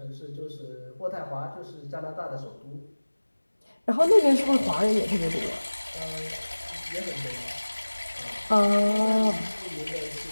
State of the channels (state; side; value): inverted; both; correlation -1.00